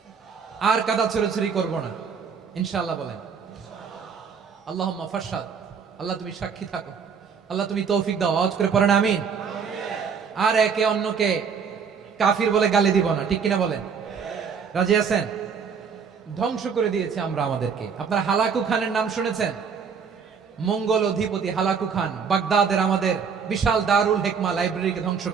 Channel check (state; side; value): quieter; left; 6.3 dB